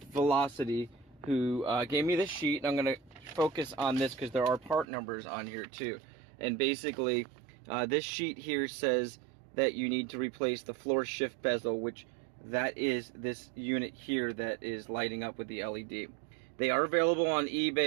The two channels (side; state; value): left; drops out; at 4.9 s